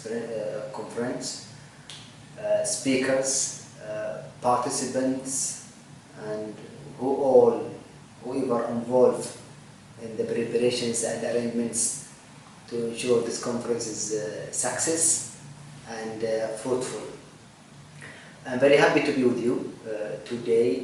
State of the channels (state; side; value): identical; both; correlation 1.00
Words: Conference, speakers, participants, and whoever involved in the preparations and arrangements to ensure this conference is success and fruitful. I'm very happy to be with you